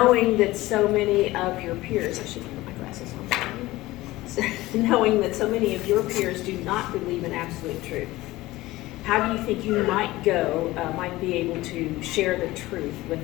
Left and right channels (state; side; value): quieter; right; 18.3 dB